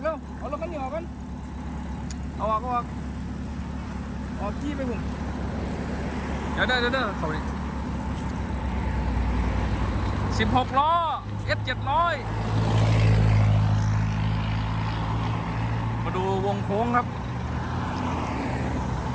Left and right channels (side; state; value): both; identical; correlation 1.00